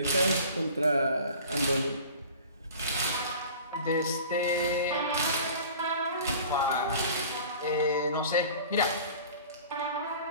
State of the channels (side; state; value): both; inverted; correlation -0.43